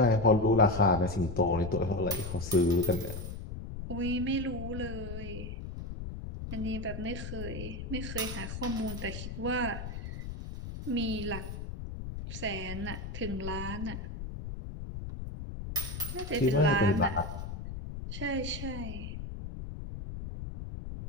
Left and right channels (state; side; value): noise; left; rumble, 7 dB below the sound